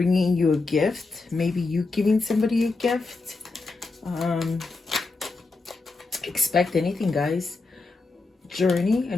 you a gift, maybe you giving somebody a gift. Expect anything, guys. Journey, a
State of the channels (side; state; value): right; quieter; 3.7 dB